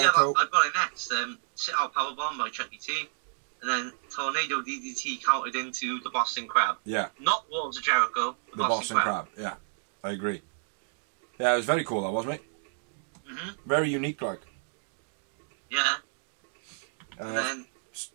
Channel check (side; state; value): left; silent; digital silence